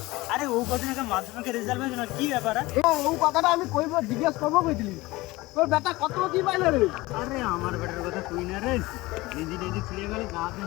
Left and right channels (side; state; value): right; quieter; 20.5 dB